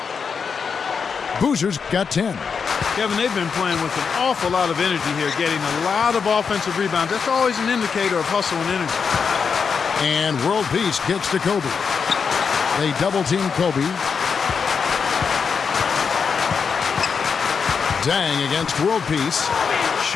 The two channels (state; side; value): quieter; right; 6.0 dB